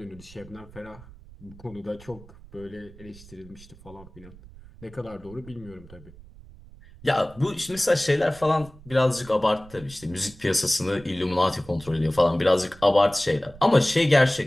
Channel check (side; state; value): right; noise; rumble, 20 dB below the sound